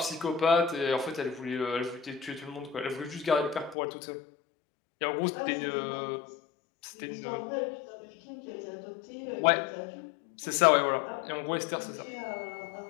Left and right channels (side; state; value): right; drops out; at 3.8 s